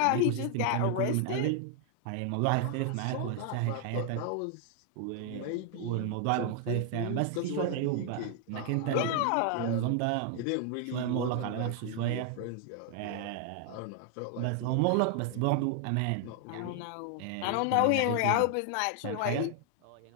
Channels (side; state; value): both; different; correlation 0.00